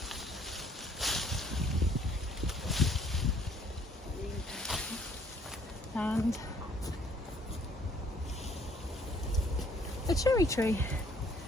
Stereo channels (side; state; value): both; normal; correlation 0.62